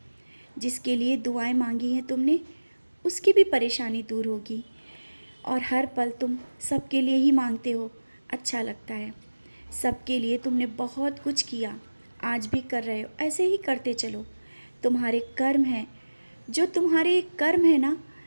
जिसके लिए दुआएं मांगी हैं तुमने, उसकी भी परेशानी दूर होगी। और हर पल तुम सबके लिए ही मांगते हो, अच्छा लगता है। सबके लिए तुमने बहुत कुछ किया, आज भी कर रहे हो, ऐसे ही करते चलो। तुम्हारे कर्म हैं, जो तुम्हारे कर्म है ना,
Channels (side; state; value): both; inverted; correlation -1.00